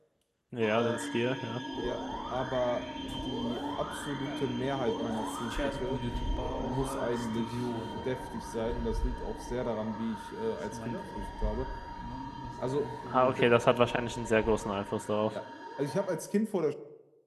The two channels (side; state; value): both; identical; correlation 1.00